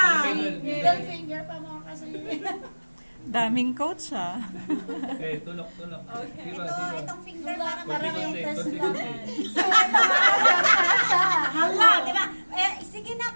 Middle finger pa more kasi. Daming coach ah. Eh, tulok, tulok. Siba, siba. Itong finger para yung Konti, test konti, lang. konti. Hala, di ba? Sige na,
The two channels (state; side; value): inverted; both; correlation -1.00